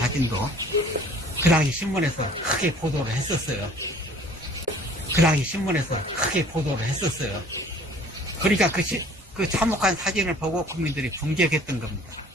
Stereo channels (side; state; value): both; normal; correlation 0.52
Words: 그 당시 신문에서 크게 보도를 했었어요. 그러니까 그 참혹한 사진을 보고 국민들이 분격했던 겁니다.